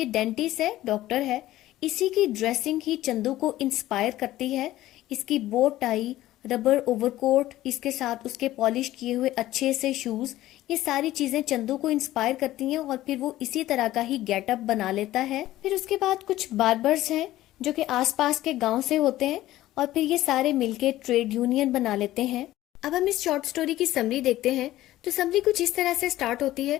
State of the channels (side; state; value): right; quieter; 15.1 dB